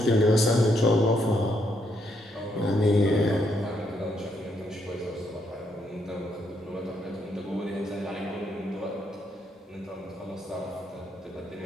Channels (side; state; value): both; normal; correlation 0.75